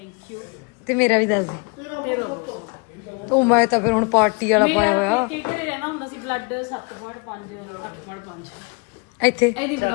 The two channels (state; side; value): quieter; right; 32.4 dB